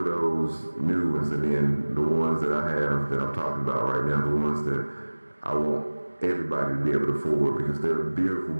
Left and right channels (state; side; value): inverted; both; correlation -1.00